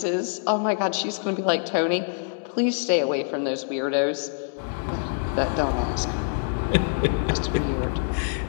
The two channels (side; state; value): right; silent; digital silence